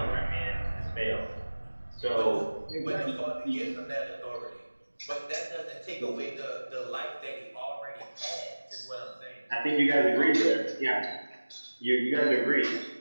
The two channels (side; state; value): both; inverted; correlation -1.00